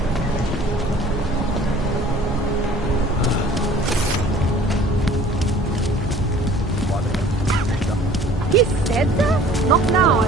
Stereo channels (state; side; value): normal; both; correlation 0.50